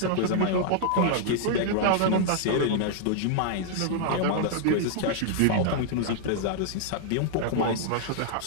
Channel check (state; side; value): different; both; correlation -0.01